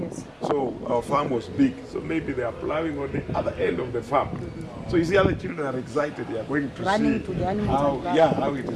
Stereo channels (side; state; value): both; identical; correlation 1.00